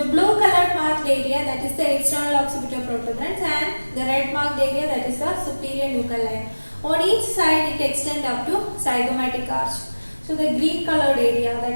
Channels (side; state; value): both; inverted; correlation -1.00